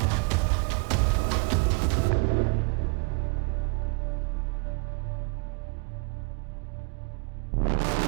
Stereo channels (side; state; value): left; quieter; 30.7 dB